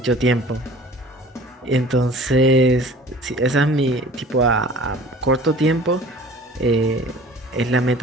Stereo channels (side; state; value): both; normal; correlation 0.46